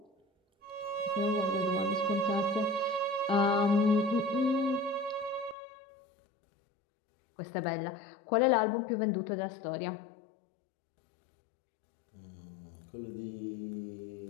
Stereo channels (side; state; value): right; drops out; at 5.6 s